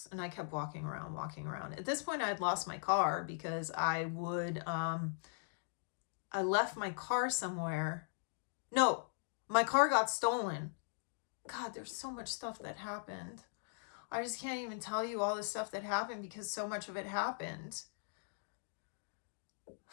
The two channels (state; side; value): silent; right; digital silence